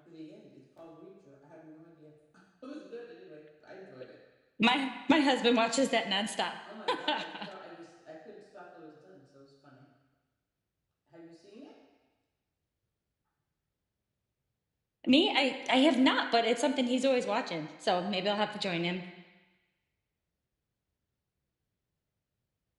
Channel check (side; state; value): both; identical; correlation 1.00